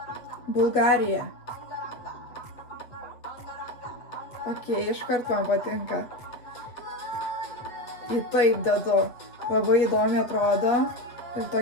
Bulgarija. Ok, iškart man patinka. Į taip dedu. Labai įdomi atrodo. Ir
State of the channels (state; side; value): late; right; 8.1 ms